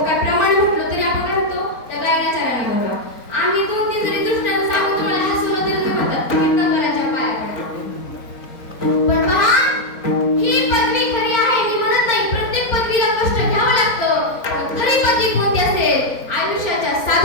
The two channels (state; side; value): late; right; 4.0 ms